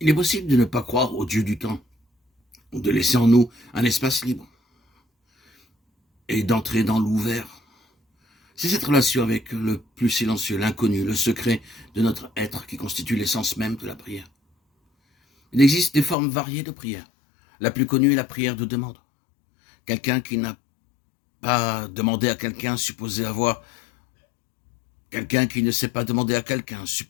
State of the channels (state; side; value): drops out; right; at 16.2 s